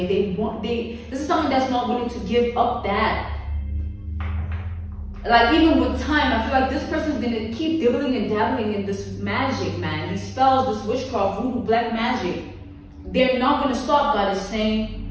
This is someone that's not willing to give up that. Like, even with time, I feel like this person's gonna keep dibbling and dabbling in this magic, man. These spells, this witchcraft, voodoo, black magic. They're not gonna stop, God is saying.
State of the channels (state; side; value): identical; both; correlation 1.00